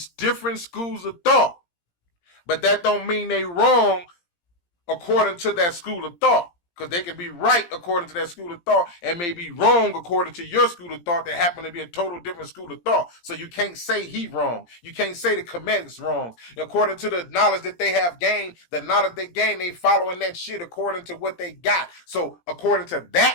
different schools of thought. But that don't mean they wrong according to that school of thought. Because they can be right according to that school of thought and may be wrong according to your school of thought that happen to be a total different school of thought. So you can't say he wrong. You can't say the Kemetic's wrong. According to the knowledge that they have gained, the knowledge they gain, they following that shit according to what they got. So according to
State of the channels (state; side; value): late; right; 17 ms